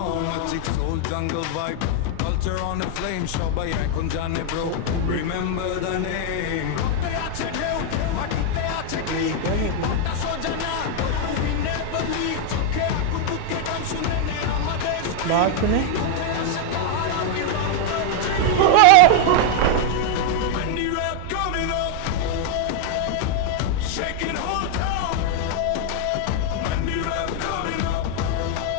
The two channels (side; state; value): both; different; correlation 0.00